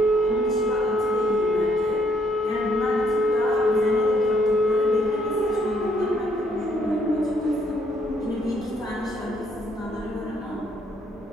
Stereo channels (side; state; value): both; normal; correlation 0.69